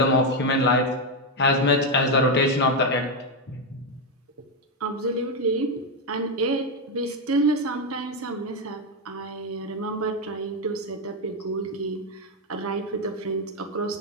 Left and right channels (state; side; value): normal; both; correlation 0.05